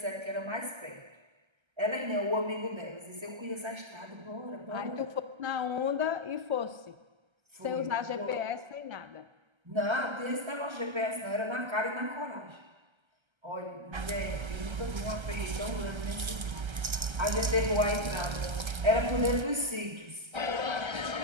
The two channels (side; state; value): left; late; 1.3 ms